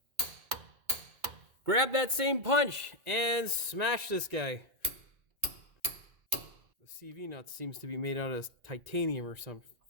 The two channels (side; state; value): left; late; 2.3 ms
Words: Grab that same punch and smash this guy. The CV nut seems to be made out of titanium or some